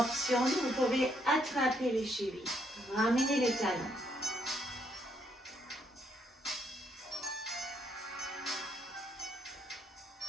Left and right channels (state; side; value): normal; both; correlation 0.73